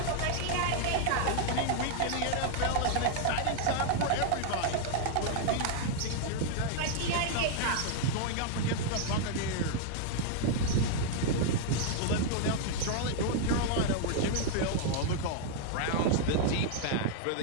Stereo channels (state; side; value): different; both; correlation 0.00